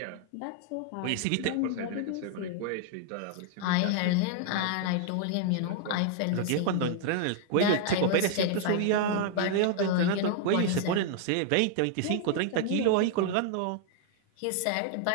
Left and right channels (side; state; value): both; different; correlation 0.00